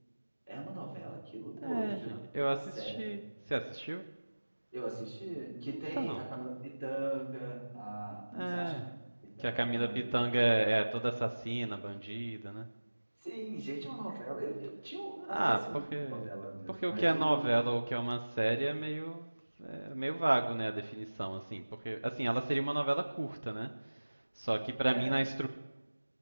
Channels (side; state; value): both; inverted; correlation -1.00